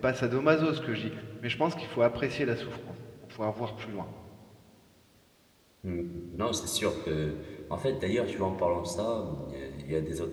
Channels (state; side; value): identical; both; correlation 1.00